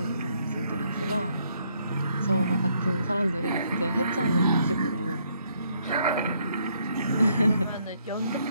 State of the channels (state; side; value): inverted; both; correlation -0.71